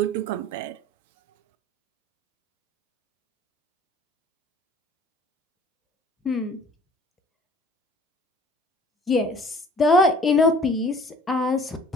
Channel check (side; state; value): both; normal; correlation 0.51